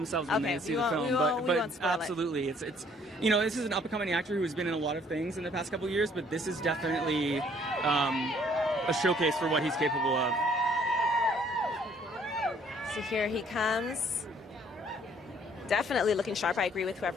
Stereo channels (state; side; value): normal; both; correlation 0.61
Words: when they see the film. We won't spoil absolutely, it's this is an up and coming actor who has been in a lot of things in the past couple of years, but this is definitely a showcase for what he's capable of. So here he comes. Definitely looking sharp. I agree with